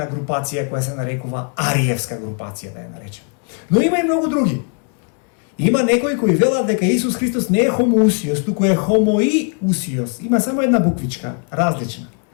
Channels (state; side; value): quieter; right; 39.2 dB